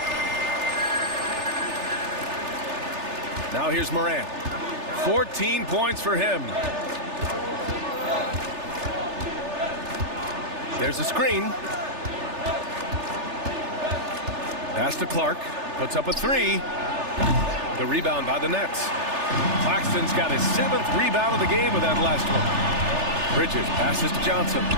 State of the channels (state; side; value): late; left; 3.3 ms